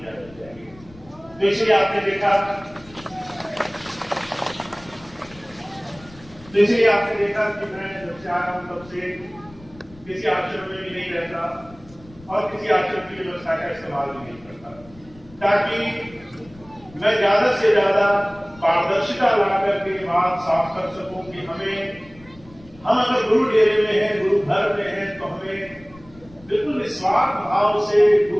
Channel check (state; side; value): noise; left; rumble, 23 dB below the sound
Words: जानी चाहिए। तो इसलिए आपने देखा कि मैं जब से आया हूं तब से किसी आश्रम में भी नहीं रहता और किसी आश्रम की व्यवस्था का इस्तेमाल भी नहीं करता, ताकि मैं ज्यादा से ज्यादा पारदर्शिता लाकर के बात साफ कर सकूं कि हम अगर गुरु डेरे में हैं, गुरु घर में हैं, तो हमें बिल्कुल निस्वार्थ भाव से